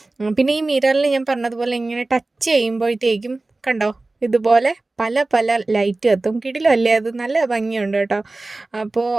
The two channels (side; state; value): left; quieter; 3.1 dB